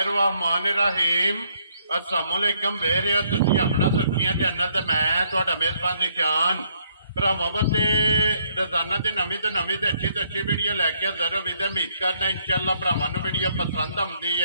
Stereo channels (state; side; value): inverted; both; correlation -0.69